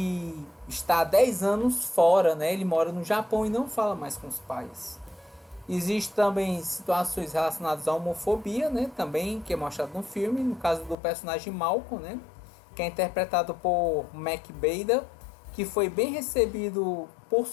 está há 10 anos fora, né? Ele mora no Japão e não fala mais com os pais. Existem também situações relacionadas à homofobia, né? Também, que é mostrado no filme, no caso do personagem Malcolm, né? Que é interpretado por Mac Bader, que foi bem recebido por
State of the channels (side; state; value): right; drops out; at 11.0 s